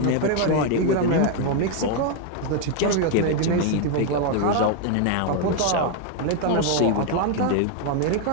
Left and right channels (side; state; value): both; different; correlation 0.01